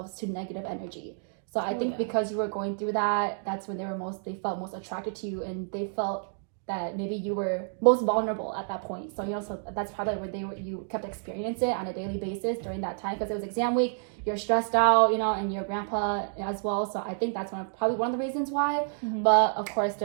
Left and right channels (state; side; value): silent; left; 58 dB below the other